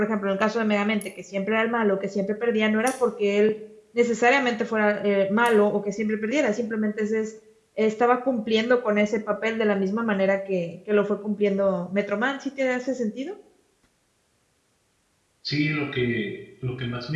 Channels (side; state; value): both; identical; correlation 1.00